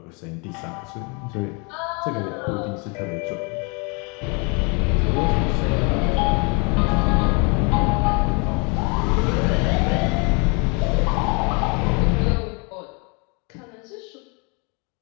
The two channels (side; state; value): right; quieter; 32.7 dB